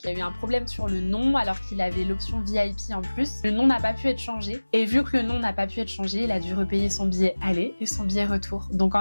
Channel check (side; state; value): both; inverted; correlation -1.00